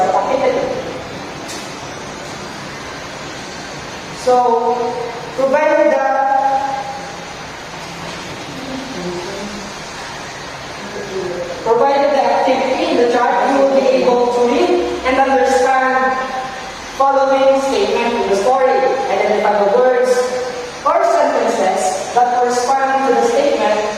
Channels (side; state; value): both; identical; correlation 1.00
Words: activity. So, provided the activity in the chart, you will be able to read and understand following statement in the story. Identify the words or sentences that correspond to the statement